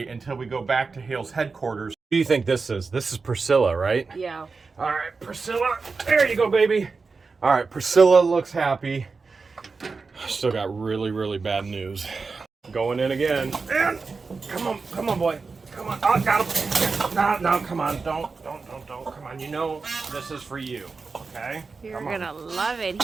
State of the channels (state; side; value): quieter; left; 4.5 dB